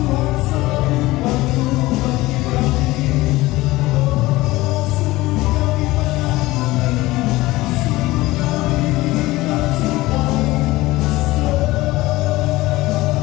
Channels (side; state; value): right; quieter; 19.0 dB